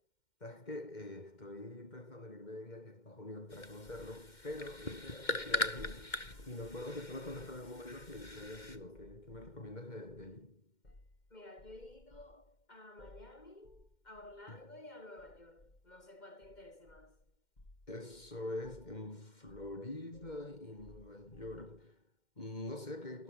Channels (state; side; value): late; right; 2.1 ms